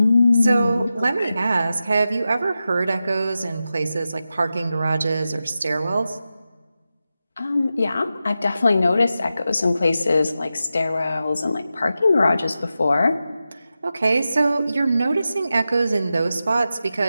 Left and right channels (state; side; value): inverted; both; correlation -0.92